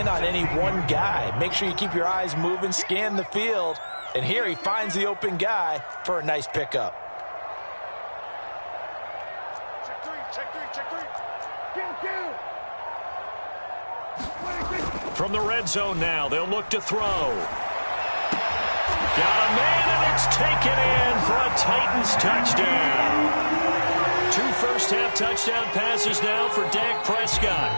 on any one guy. Make sure you keep your eyes moving, scan the field. And here he finds the open guy for a nice pickup. From the red zone now, they'll look to throw. Got a man, and it's taken in for a Titans touchdown. 2 first-half touchdown passes now for Dak Prescott.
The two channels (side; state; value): both; inverted; correlation -1.00